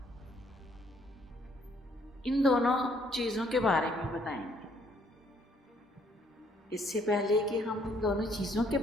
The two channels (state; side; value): normal; both; correlation 0.66